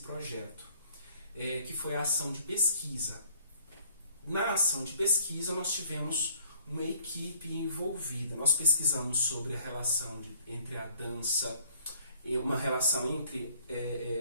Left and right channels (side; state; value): both; inverted; correlation -0.61